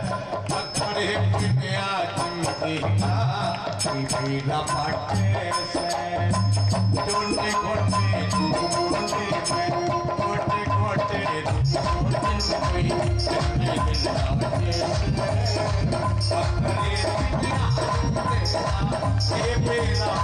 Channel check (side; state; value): both; identical; correlation 1.00